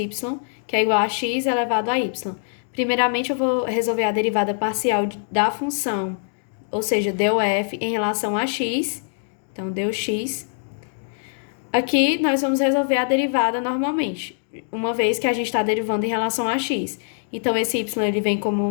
que é igual a x elevado a y. Primeiramente, eu vou resolver a derivada parcial da função, ou seja, df em relação a x. Então, deu x. Aqui, nós vamos resolver a derivada normalmente, uma vez que a gente está derivando em relação a x. Então, esse y ele vem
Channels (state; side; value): silent; right; digital silence